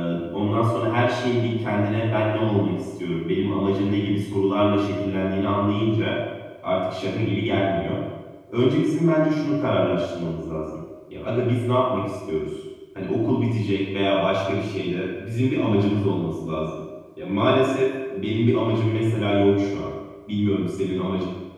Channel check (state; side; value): identical; both; correlation 1.00